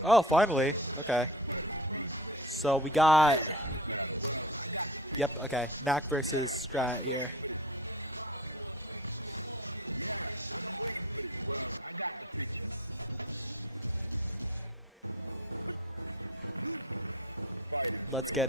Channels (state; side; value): normal; both; correlation 0.36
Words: Oh, finally. Okay. So we got. Yep. Okay. Knack versus Strat here. Let's get